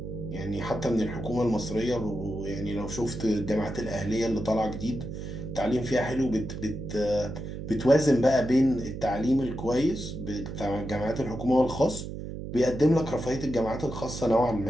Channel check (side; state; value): right; noise; hum, 8 dB below the sound